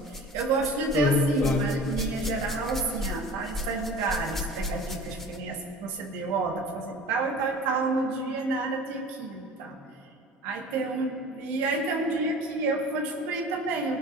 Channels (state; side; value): normal; both; correlation 0.41